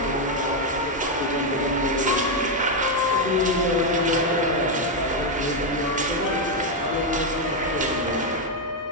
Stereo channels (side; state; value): both; normal; correlation 0.03